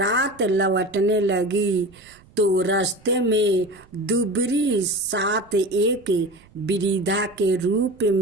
लौटने लगी तो रास्ते में दुबरी सात एक वृद्धा के रूप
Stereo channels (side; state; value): right; noise; rumble, 27 dB below the sound